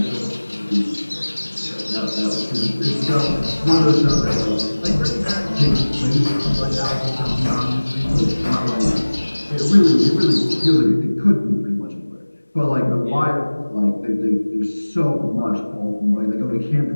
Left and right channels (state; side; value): inverted; both; correlation -1.00